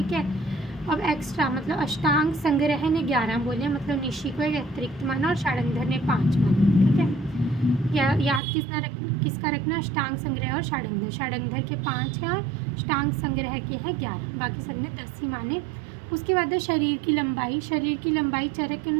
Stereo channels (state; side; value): drops out; left; at 8.4 s